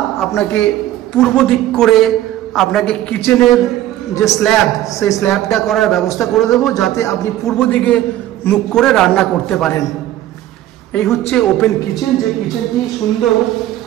আপনাকে পূর্ব দিক করে আপনাকে কিচেনের যে স্ল্যাব, সেই স্ল্যাবটা করার ব্যবস্থা করে দেবো, যাতে আপনি পূর্ব দিকে মুখ করে রান্না করতে পারেন। এই হচ্ছে ওপেন কিচেন। যে কিচেনটি সুন্দর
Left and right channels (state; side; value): quieter; left; 13.6 dB